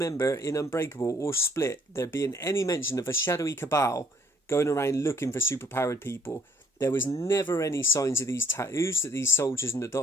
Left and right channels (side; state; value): both; normal; correlation 0.63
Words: in Unbreakable or Split there being any mention of a shadowy cabal going around looking for superpowered people. There was never any signs of these tattoos that these soldiers and the